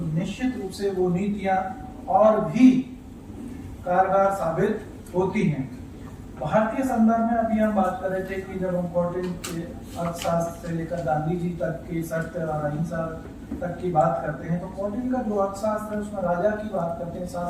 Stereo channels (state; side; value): identical; both; correlation 1.00